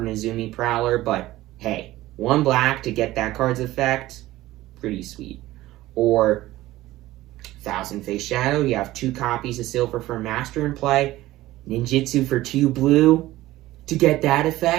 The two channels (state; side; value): quieter; left; 16.5 dB